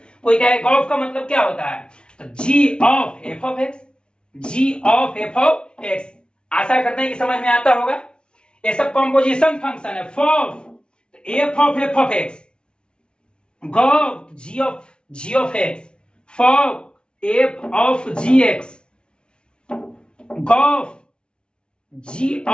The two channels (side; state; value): right; late; 0.056 ms